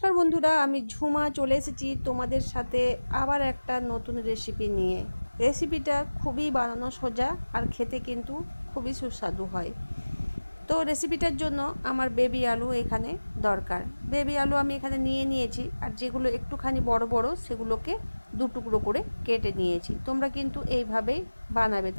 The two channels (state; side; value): inverted; both; correlation -1.00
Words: বন্ধুরা, আমি ঝুমা চলে এসেছি তোমাদের সাথে আবার একটা নতুন রেসিপি নিয়ে। রেসিপিটা খুবই বানানো সোজা আর খেতে কিন্তু খুবই সুস্বাদু হয়। তো রেসিপিটার জন্য আমার বেবি আলু এখানে দরকার। বেবি আলু আমি এখানে নিয়েছি, আর যেগুলো একটুখানি বড় বড় সেগুলোকে 2 টুকরো করে কেটে নিয়েছি। তোমরা কিন্তু এইভাবেই বানাবে,